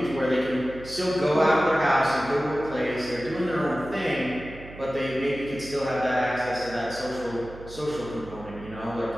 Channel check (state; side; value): noise; right; hum, 16 dB below the sound